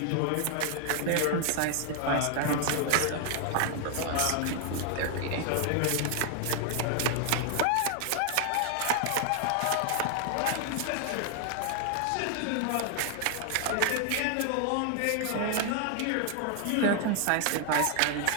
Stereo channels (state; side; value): different; both; correlation 0.00